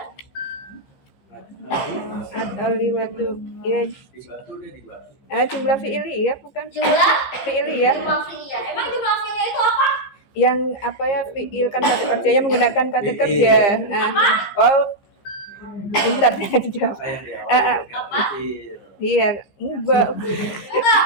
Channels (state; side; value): late; right; 15 ms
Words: At-taliwatu. Ya, Di batu deh di batu. jumlah fi'iliyah bukan? Jumlah Fi'iliyah. jumlah fi'liyah. Emang jumlah fi'liyah itu apa? Yang apa ya fi'il kan kata kerjanya menggunakan kata kerja. Bentar ya dijawab. Apa yang di awal? Apa? Iya, enggak. Enggak,